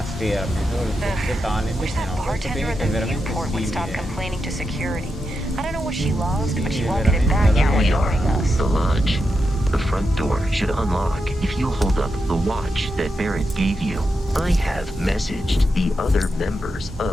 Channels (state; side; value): normal; both; correlation 0.86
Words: sfera, solo il forse tale, invece no, questo è veramente simile. The lodge. The front door should unlock if you hold up the watch that Barrett gave you. I have messaged the other members